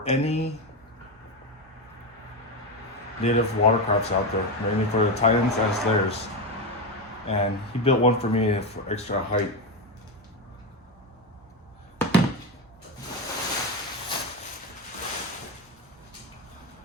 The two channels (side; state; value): both; normal; correlation 0.13